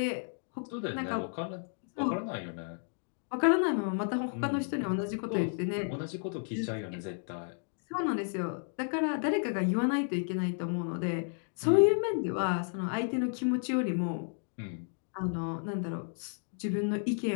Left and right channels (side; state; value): right; silent; 56 dB below the other